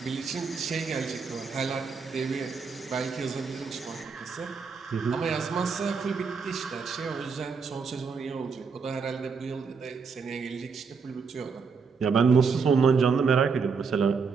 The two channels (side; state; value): left; quieter; 5.4 dB